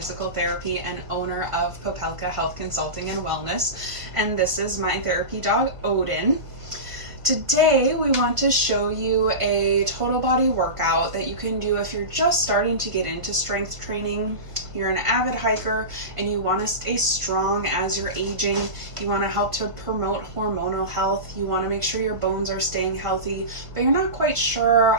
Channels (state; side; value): late; left; 1.5 ms